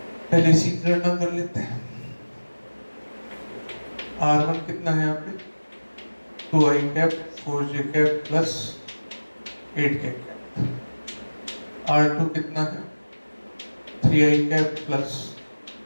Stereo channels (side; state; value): both; inverted; correlation -1.00